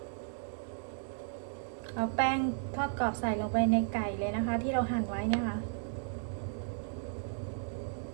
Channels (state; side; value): silent; left; digital silence